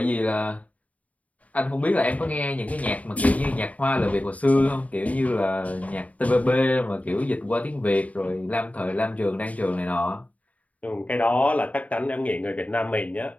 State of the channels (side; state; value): right; late; 0.070 ms